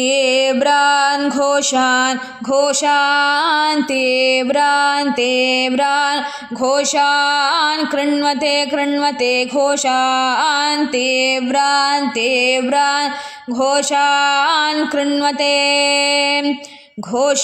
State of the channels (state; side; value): identical; both; correlation 1.00